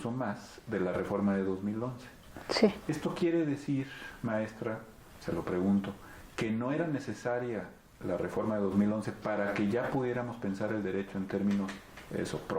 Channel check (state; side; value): identical; both; correlation 1.00